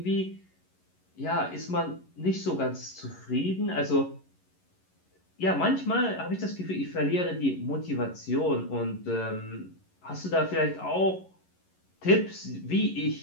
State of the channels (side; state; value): right; late; 11 ms